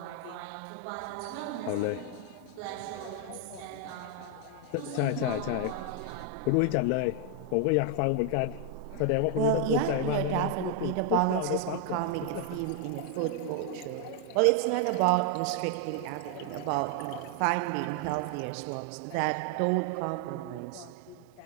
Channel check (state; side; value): different; both; correlation 0.00